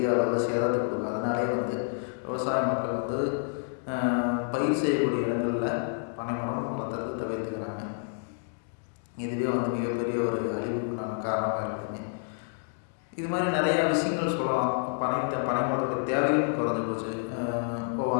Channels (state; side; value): silent; right; digital silence